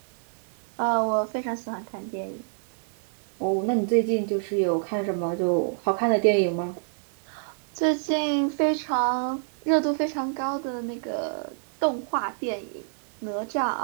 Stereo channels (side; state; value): left; silent; digital silence